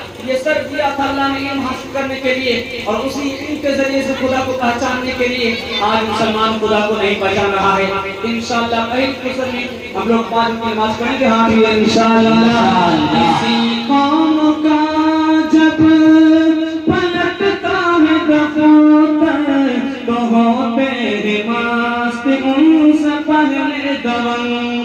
ये सर दिया था अल्लाह ने इल्म हासिल करने के लिए और उसी इल्म के जरिए से खुदा को पहचानने के लिए। आज मुसलमान खुदा को नहीं पहचान रहा है। इंशाअल्लाह पहली फजर में हम लोग 5 वक्त की नमाज पढ़ेंगे। हाँ भी इंशाअल्लाह। किसी कौम का जब पलटता है दफ्तर तो होते हैं मस्त उनसे पहले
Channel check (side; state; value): both; identical; correlation 1.00